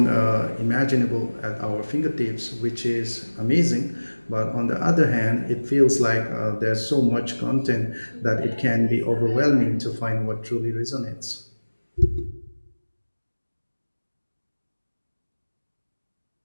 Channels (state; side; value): inverted; both; correlation -1.00